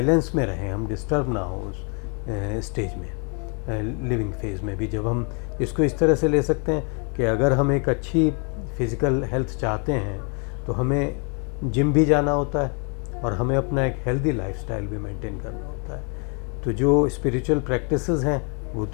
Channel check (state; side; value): quieter; right; 37.0 dB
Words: में रहें, हम डिस्टर्ब ना हो उस स्टेज में, लिविंग फेज़ में भी। जब हम इसको इस तरह से ले सकते हैं कि अगर हम एक अच्छी फिज़िकल हेल्थ चाहते हैं तो हमें जिम भी जाना होता है और हमें अपना एक हेल्दी लाइफस्टाइल भी मेंटेन करना होता है। तो जो स्पिरिचुअल प्रैक्टिसेस हैं वो